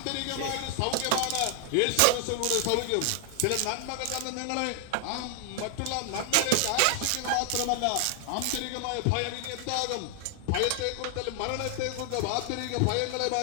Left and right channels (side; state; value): both; different; correlation 0.00